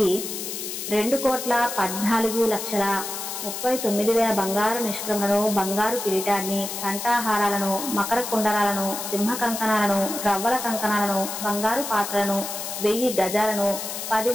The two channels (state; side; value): noise; left; hiss, 6 dB below the sound